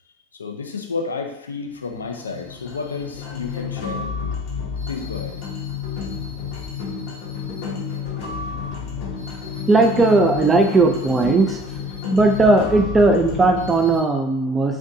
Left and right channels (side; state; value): both; normal; correlation 0.55